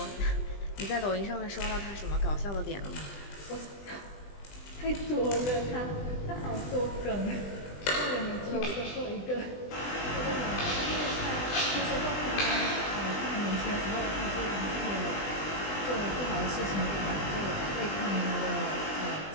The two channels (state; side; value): late; right; 20 ms